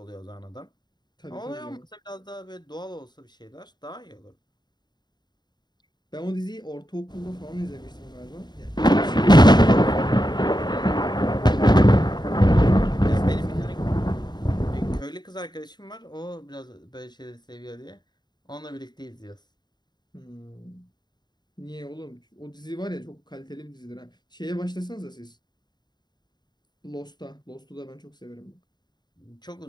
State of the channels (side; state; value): right; late; 0.21 ms